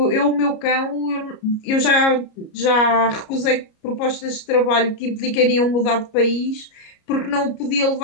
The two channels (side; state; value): right; late; 33 ms